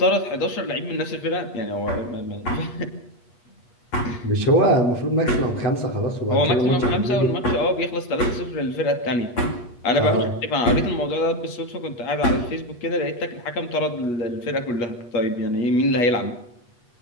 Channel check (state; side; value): late; right; 8.3 ms